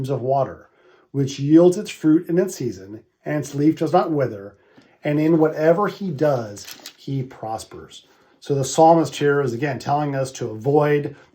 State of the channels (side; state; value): both; identical; correlation 1.00